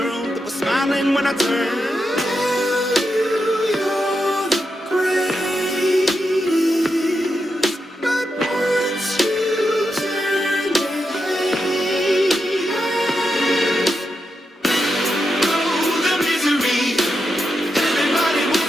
that was smiling when I turned.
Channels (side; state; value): both; normal; correlation 0.86